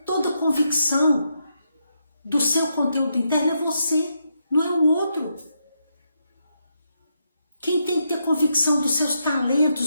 toda a convicção do seu conteúdo interno é você, não é o outro. Quem tem que ter convicção dos seus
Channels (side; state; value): both; inverted; correlation -0.82